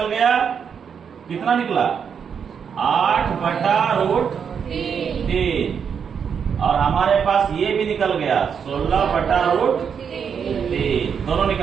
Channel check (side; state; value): left; quieter; 7.1 dB